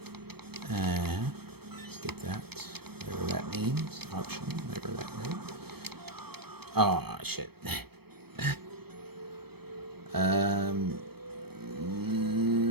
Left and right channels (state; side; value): late; left; 0.97 ms